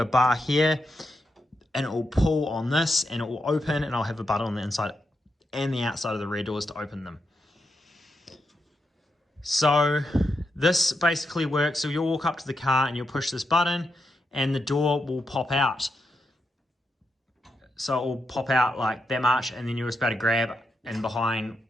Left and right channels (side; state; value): both; normal; correlation 0.84